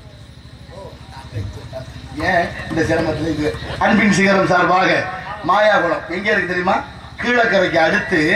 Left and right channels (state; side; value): identical; both; correlation 1.00